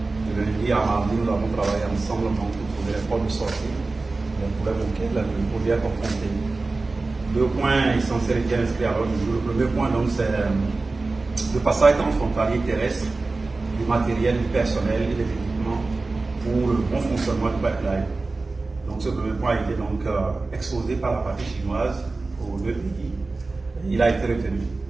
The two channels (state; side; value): quieter; left; 3.5 dB